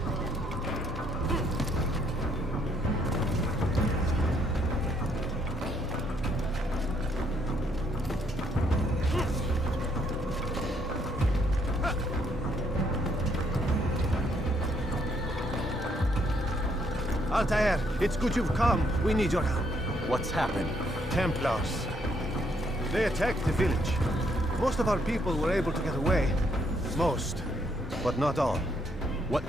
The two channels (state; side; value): normal; both; correlation 0.71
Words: Altair, it's good you've come. We need your help. What's happened? Templars. They attacked the village. Most of our people were able to get away. Most, but not all. What